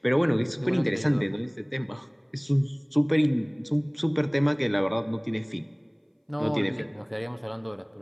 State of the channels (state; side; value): identical; both; correlation 1.00